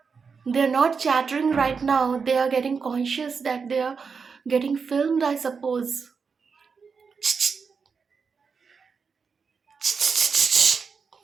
They're not chattering right now, they are getting conscious that they are getting filmed, I suppose.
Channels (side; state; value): left; quieter; 5.5 dB